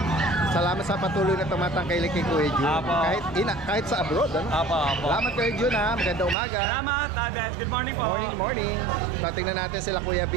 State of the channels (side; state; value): left; drops out; at 6.4 s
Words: Salamat sa patuloy na tumatangkilik kay Kuya Jun. Apo. Kahit sa abroad, ano? Opo. Salamat Kuya Jun ha. Magandang umaga. Salamat, Dad. Good morning po. Morning. So, tingnan natin sila Kuya